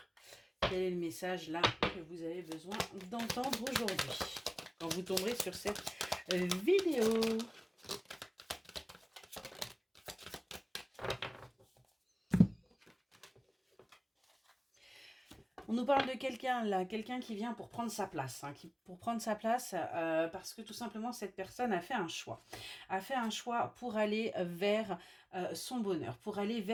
Quel est le message là que vous avez besoin d'entendre aujourd'hui quand vous tomberez sur cette vidéo? On nous parle de quelqu'un là, quelqu'un qui vient pour prendre sa place, parce que tout simplement cette personne a fait un choix. A fait un choix pour aller vers son bonheur, pour aller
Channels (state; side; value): identical; both; correlation 1.00